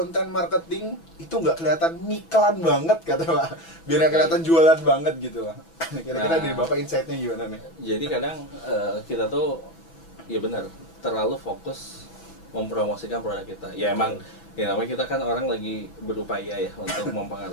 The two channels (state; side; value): late; right; 6.0 ms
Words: marketing itu nggak kelihatan ngiklan banget kata Pak. Biar nggak kelihatan jualan banget gitu Pak. Kira-kira dari Bapak insight-nya gimana nih? Jadi kadang kita tuh ya benar terlalu fokus mempromosikan produk kita. Ya emang ya namanya kita kan orang lagi berupaya ya untuk